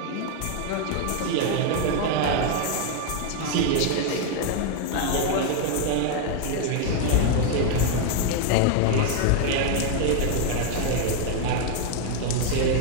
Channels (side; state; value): both; different; correlation 0.00